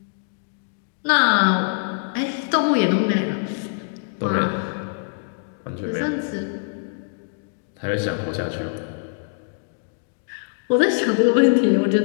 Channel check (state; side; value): silent; right; digital silence